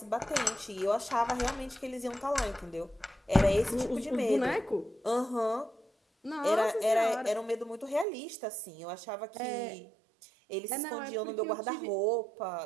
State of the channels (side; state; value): left; drops out; at 8.1 s